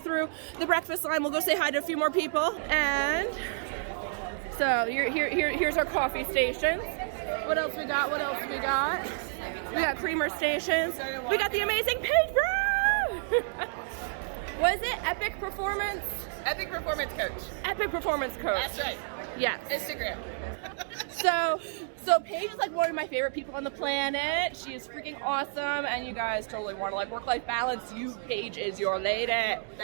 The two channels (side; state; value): left; silent; digital silence